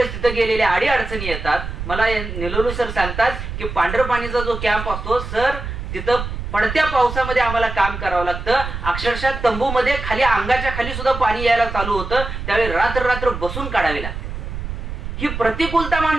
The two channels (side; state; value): right; noise; rumble, 7 dB below the sound